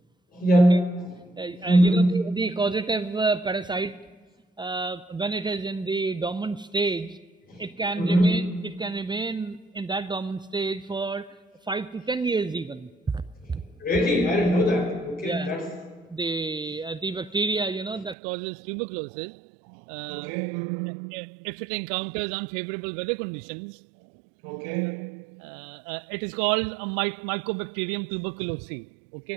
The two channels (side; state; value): left; drops out; at 18.2 s